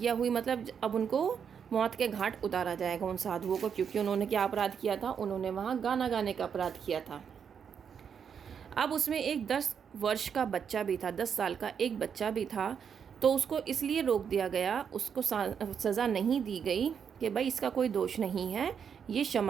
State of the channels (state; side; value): quieter; left; 7.3 dB